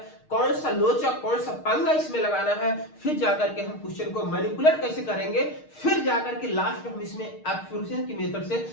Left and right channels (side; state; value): right; late; 6.5 ms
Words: कौन सा लोचा कौन सा पंगा इसमें लगाना है, फिर जाकर के हम क्वेश्चन को मैनिपुलेट कैसे करेंगे, फिर जाकर के लास्ट में हम इसमें एप्लीकेशन की मेथड से